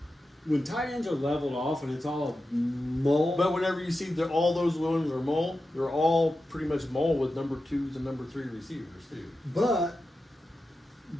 When tight ends are leveled off and it's all mold. But whenever you see that all those ones are mole, they're all pretty much mole with number 2s and number 3 receivers too. But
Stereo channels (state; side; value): normal; both; correlation 0.91